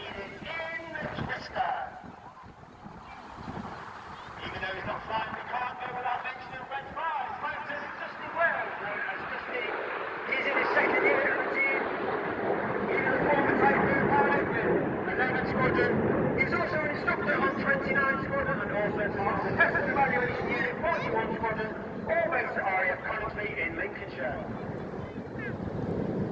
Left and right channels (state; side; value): identical; both; correlation 1.00